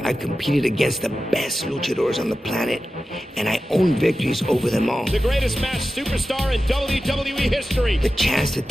I've competed against the best luchadors on the planet, and I own victories over them all. The greatest masked superstar in WWE history. The chance to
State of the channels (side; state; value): both; normal; correlation 0.93